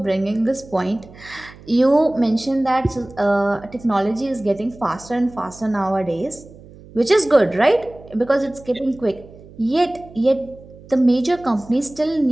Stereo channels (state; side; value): noise; right; hum, 21 dB below the sound